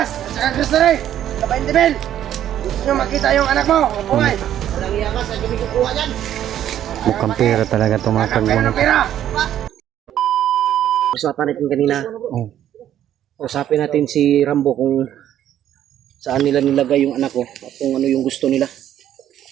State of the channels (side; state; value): left; quieter; 11.2 dB